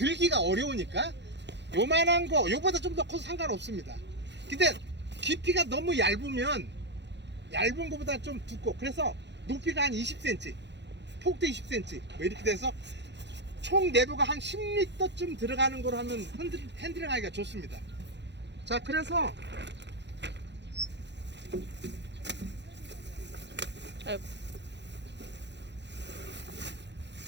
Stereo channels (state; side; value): late; left; 0.51 ms